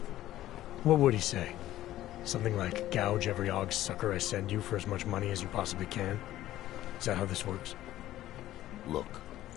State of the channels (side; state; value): right; quieter; 14.1 dB